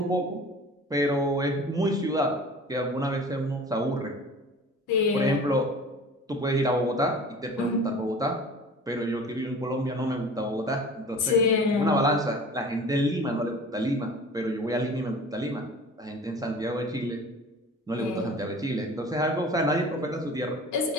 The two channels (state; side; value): normal; both; correlation 0.42